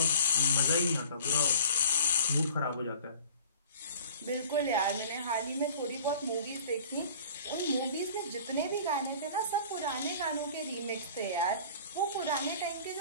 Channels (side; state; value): both; inverted; correlation -0.46